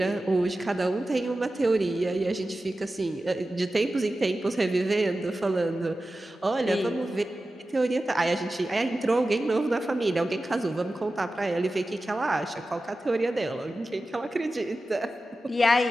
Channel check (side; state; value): both; normal; correlation 0.94